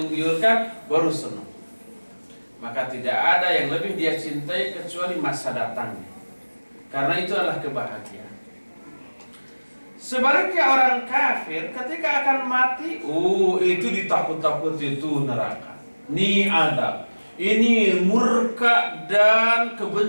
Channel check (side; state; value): both; inverted; correlation -1.00